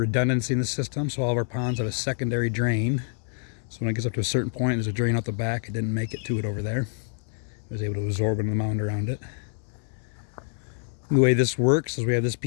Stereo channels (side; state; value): right; silent; digital silence